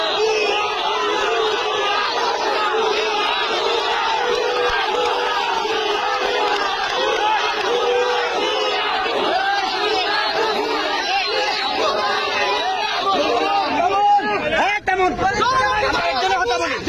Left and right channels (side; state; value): both; identical; correlation 1.00